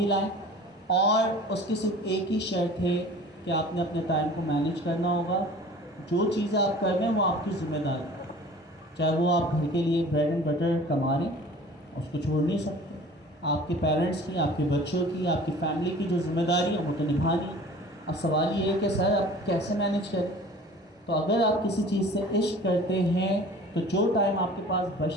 लाएँ, और उसकी सिर्फ एक ही शर्त है कि आपने अपने टाइम को मैनेज करना होगा। जो चीज़ें आप कर रहे हैं वो आपकी जिम्मेदारी है, चाहे वो आप घर के लिए ब्रेड एंड बटर कमा रहे हैं, उसको छोड़ नहीं सकते। आपके पेरेंट्स की, आपके बच्चों की, आपकी फैमिली की जो जिम्मेदारी है वो तो निभानी है। अब सवाल ये है कि सर आप कैसे मैनेज करें। तो अगर आप किसी चीज़ से इश्क करते हैं तो जो टाइम आपके पास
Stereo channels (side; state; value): both; normal; correlation 0.44